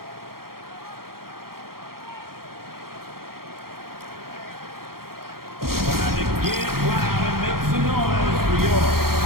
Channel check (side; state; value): left; late; 0.93 ms